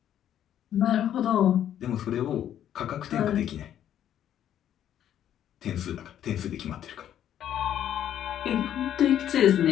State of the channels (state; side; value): quieter; right; 10.6 dB